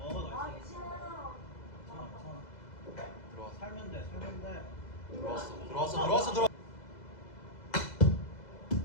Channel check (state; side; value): late; right; 2.0 ms